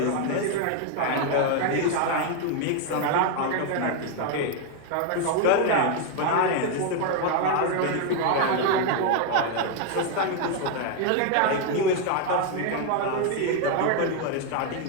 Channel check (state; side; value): different; both; correlation 0.01